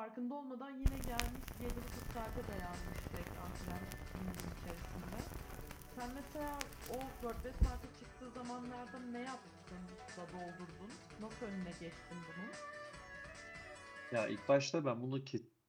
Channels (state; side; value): identical; both; correlation 1.00